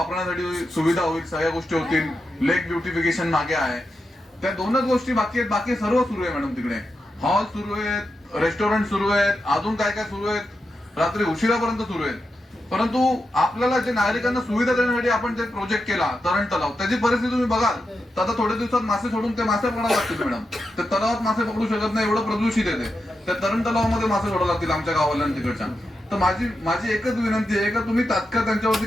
सुविधा होईल, सगळ्या गोष्टी होतील. लेक ब्युटिफिकेशन मागे आहे. त्या 2च गोष्टी बाकी आहेत. बाकी सर्व सुरू आहे मॅडम. तिकडे हॉल सुरू आहेत, रेस्टॉरंट सुरू आहेत, अजून काय काय सुरू आहेत, रात्री उशिरापर्यंत सुरू आहेत. परंतु आपल्याला जे नागरिकांना सुविधा देण्यासाठी आपण जे प्रोजेक्ट केला तरण तलाव त्याची परिस्थिती तुम्ही बघाल तर आता थोड्या दिवसात मासे सोडून ते मासे पकडायला लागतील मॅडम. ते तलावात मासे पकडू शकत नाही, एवढं प्रदूषित येते. त्या तरण तलावामध्ये मासे सोडायला लागतील आमच्या गावाला तिकडच्या. तर माझी एकच विनंती आहे की तुम्ही तात्काळ त्यांच्यावरती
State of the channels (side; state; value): both; normal; correlation 0.87